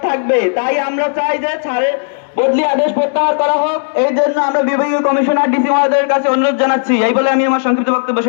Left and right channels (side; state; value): right; silent; digital silence